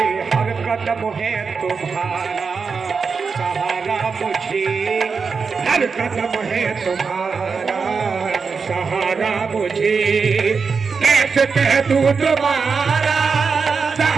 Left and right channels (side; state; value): left; quieter; 5.2 dB